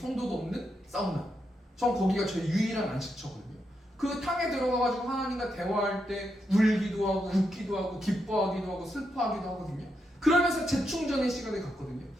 없는 사우나. 전 거기가 저희 유일한 안식처거든요. 그 탕에 들어가가지고 하나님과 대화할 때 울기도 하고 웃기도 하고 기뻐하기도 하고 슬퍼하기도 하거든요. 그러면서 재충전의 시간을 갖거든요.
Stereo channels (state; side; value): normal; both; correlation 0.83